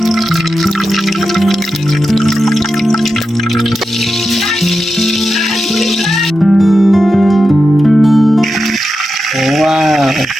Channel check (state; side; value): normal; both; correlation 0.90